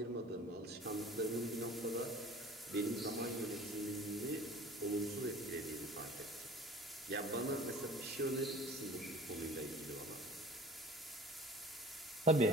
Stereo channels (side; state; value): both; normal; correlation 0.44